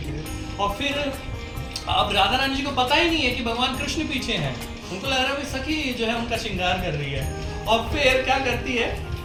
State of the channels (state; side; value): identical; both; correlation 1.00